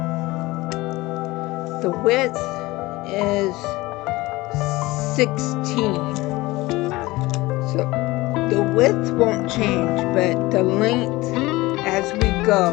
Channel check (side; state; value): right; quieter; 20.4 dB